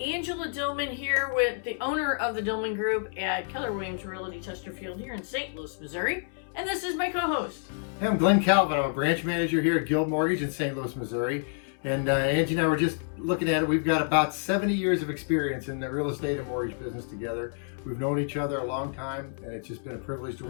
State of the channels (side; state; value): right; silent; 59 dB below the other